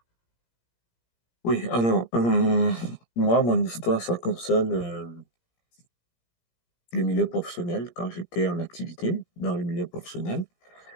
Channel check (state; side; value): late; right; 17 ms